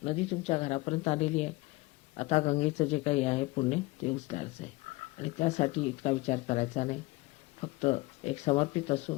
नदी तुमच्या घरापर्यंत आलेली आहे. आता गंगेचं जे काही आहे पुण्य ते उचलायचं आहे आणि त्यासाठी इतका विचार करायचा नाही. फक्त एक समर्पित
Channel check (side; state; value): right; quieter; 21.7 dB